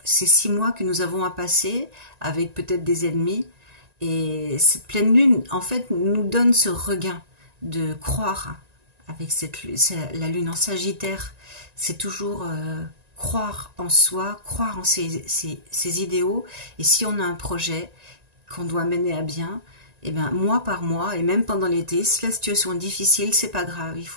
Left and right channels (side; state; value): left; late; 1.9 ms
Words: 6 mois que nous avons à passer avec peut-être des ennemis. Et cette pleine lune, en fait, nous donne ce regain de croire. Avec la lune en Sagittaire, c'est toujours croire en soi, croire en ses idéaux. Et si on a un projet qu'on doit mener à bien, et bien, mois par mois, et même pendant l'été, si la situation est difficile, c'est pas grave. Il